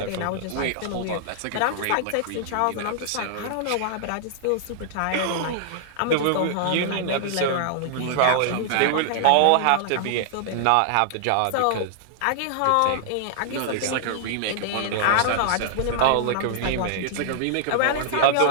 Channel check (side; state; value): both; different; correlation 0.00